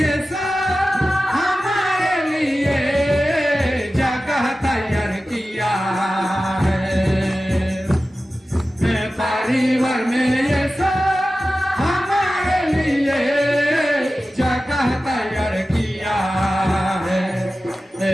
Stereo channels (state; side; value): normal; both; correlation 0.95